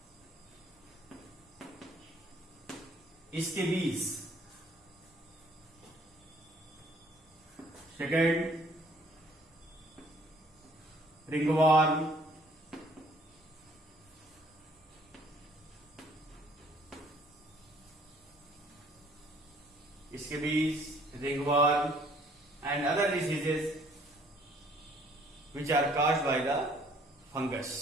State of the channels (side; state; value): both; normal; correlation 0.60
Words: Scabies. Second, ringworm. Scabies, ringworm, and other diseases which are caused by the